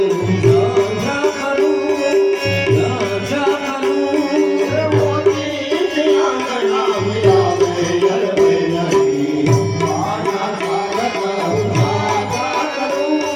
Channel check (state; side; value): identical; both; correlation 1.00